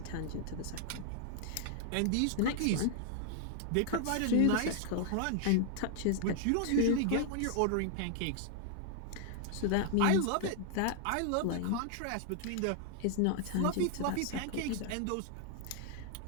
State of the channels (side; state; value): both; different; correlation 0.00